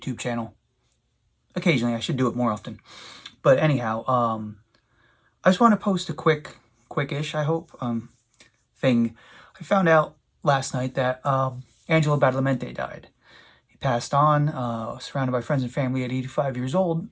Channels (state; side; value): identical; both; correlation 1.00